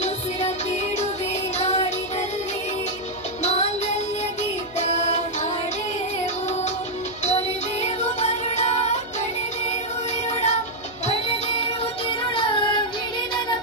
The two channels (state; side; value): noise; left; hum, 21 dB below the sound